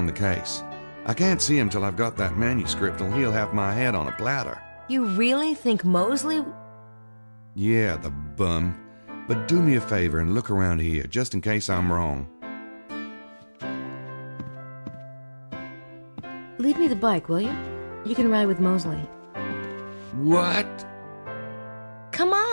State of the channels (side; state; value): both; inverted; correlation -1.00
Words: the case. I can't see him till I've got that manuscript, or he'll have my head on a platter. You really think Mosley... Yeah, the bum. But do me a favor and look around here, just in case I'm wrong. Leave me the bike, will you? You can ride with Mosley. What? Come